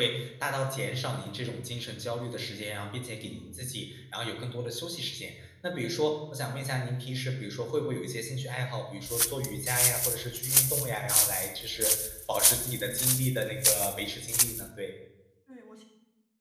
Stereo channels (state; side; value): identical; both; correlation 1.00